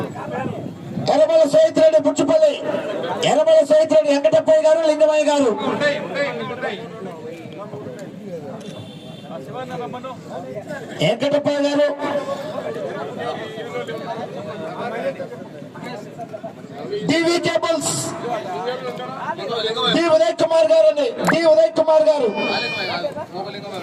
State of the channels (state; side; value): identical; both; correlation 1.00